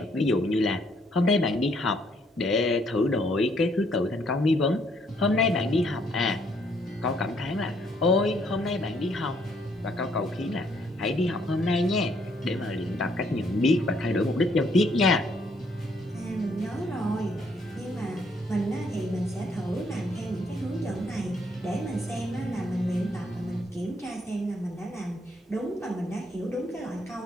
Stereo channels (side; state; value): both; normal; correlation 0.69